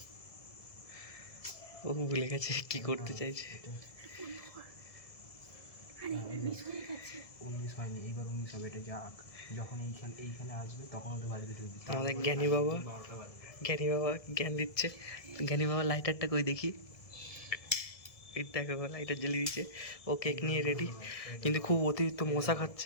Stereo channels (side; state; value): right; late; 1.7 ms